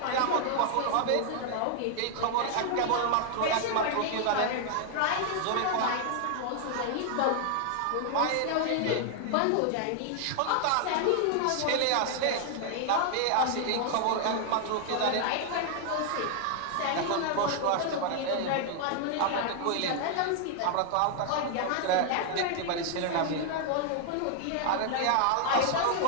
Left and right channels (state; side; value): different; both; correlation 0.00